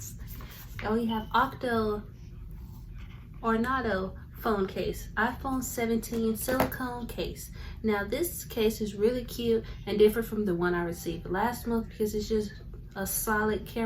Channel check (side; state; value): both; identical; correlation 1.00